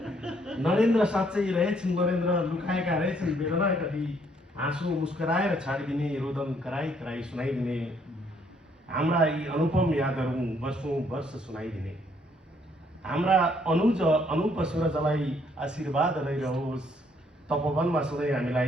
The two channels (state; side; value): normal; both; correlation 0.68